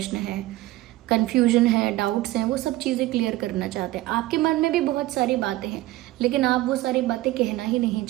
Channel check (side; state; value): left; quieter; 17.2 dB